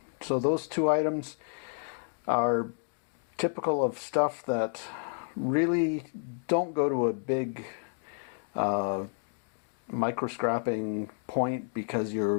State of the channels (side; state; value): right; silent; 57 dB below the other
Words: So those two items are typical of stuff that really don't go to a big micro scrapping point, because